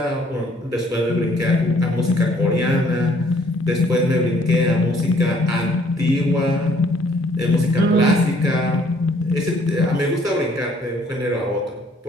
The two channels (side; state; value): both; normal; correlation 0.62